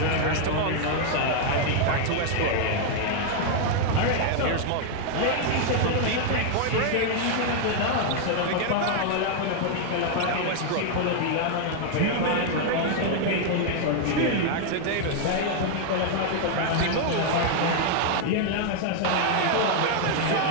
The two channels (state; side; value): different; both; correlation 0.00